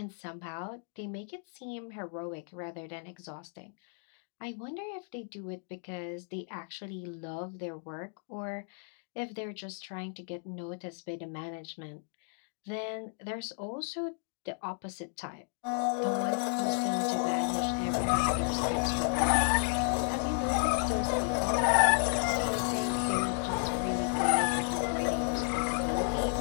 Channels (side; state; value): right; silent; 56 dB below the other